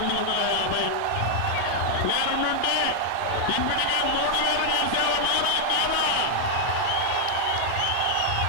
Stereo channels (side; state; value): both; different; correlation -0.01